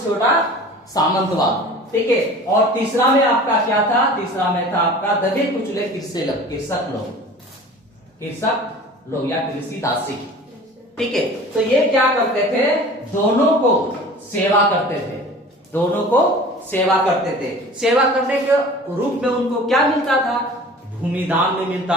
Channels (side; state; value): both; normal; correlation 0.42